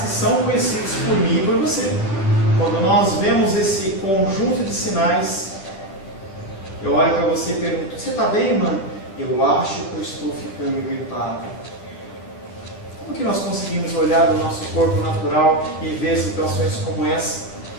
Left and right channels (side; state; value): right; late; 10 ms